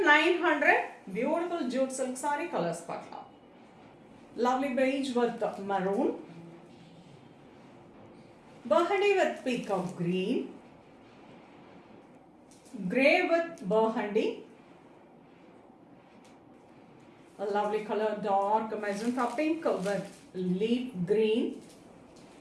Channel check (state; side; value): identical; both; correlation 1.00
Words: Beautiful jute silk sari. Colours பார்க்கலாம். Lovely beige with maroon, burgundy with peacock green, grey with burgundy, a lovely color dark magenta pink with leaf green,